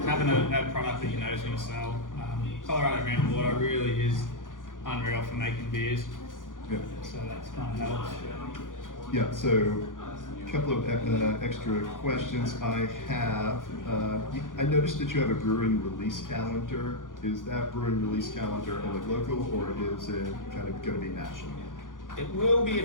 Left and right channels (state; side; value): late; right; 0.89 ms